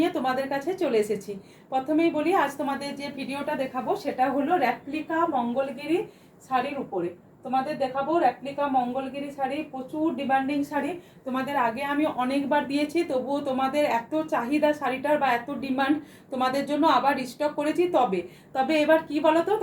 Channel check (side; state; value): both; identical; correlation 1.00